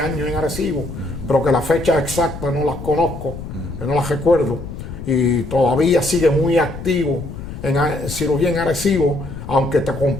en Arecibo, pero que la fecha exacta no las conozco, no las recuerdo, y todavía sigue muy activo en cirugía en Arecibo, aunque te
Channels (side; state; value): left; noise; rumble, 10 dB below the sound